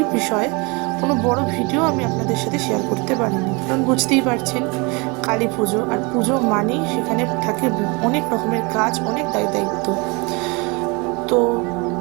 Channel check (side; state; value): left; quieter; 28.4 dB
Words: বিষয়ে কোনো বড় ভিডিও আমি আপনাদের সাথে শেয়ার করতে পারিনি, কারণ বুঝতেই পারছেন কালী পুজো, আর পুজো মানেই সেখানে থাকে অনেক রকমের কাজ, অনেক দায়িত্ব। তো